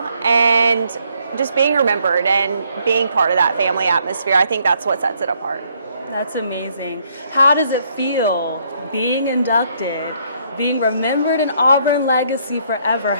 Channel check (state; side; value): inverted; both; correlation -0.70